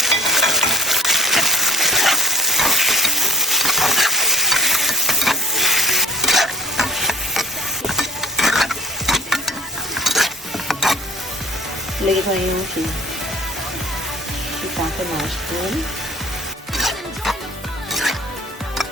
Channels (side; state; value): both; normal; correlation 0.50